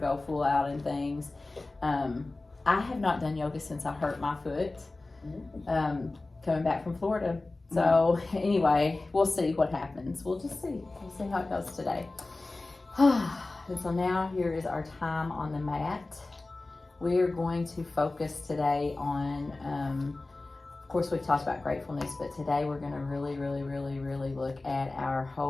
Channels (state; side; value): quieter; right; 3.2 dB